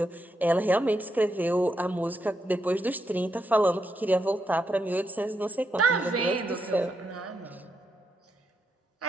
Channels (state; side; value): normal; both; correlation 0.82